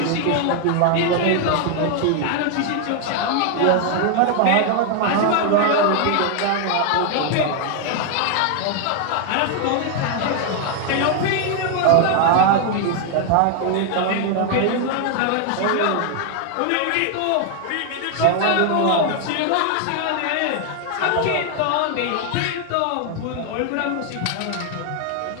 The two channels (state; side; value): different; both; correlation 0.00